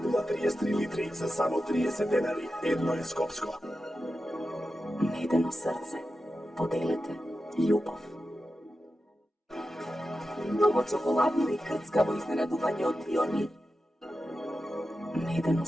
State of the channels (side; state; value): both; normal; correlation 0.91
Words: 0,33 литри за само 30 денари. Едно е Скопско. Медено срце. Поделете љубов. Многу чоколадно и крцкаво изненадување од Пионир. Медено